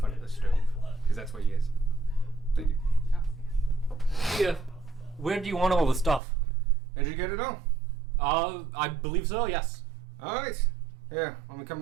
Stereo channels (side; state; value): left; drops out; at 6.2 s